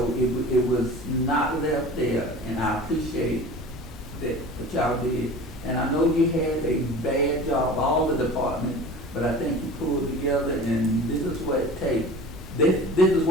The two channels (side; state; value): both; normal; correlation 0.38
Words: it was not left there, and I appreciate that what y'all did. And I know you had a bad job, all the departments, but I think you pulled together, and this is what it takes. This is